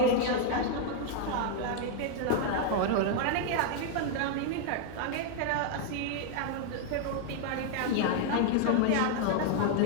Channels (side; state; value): both; different; correlation 0.00